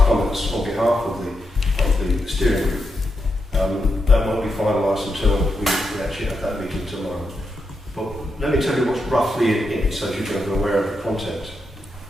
comments on behalf of the steering group, that won't be finalised until we actually have that meeting tomorrow. But let me tell you what's roughly in it, so you can be aware of the content.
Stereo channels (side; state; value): both; normal; correlation 0.84